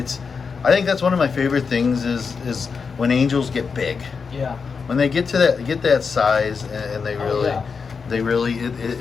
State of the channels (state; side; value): quieter; right; 5.4 dB